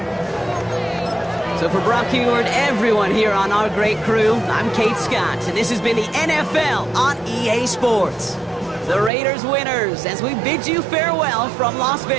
So for Brock Huard, everyone here on our great crew, I'm Kate Scott, and this has been the NFL on EA Sports. The Raiders winners as we bid you farewell from Las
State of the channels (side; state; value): left; drops out; at 9.1 s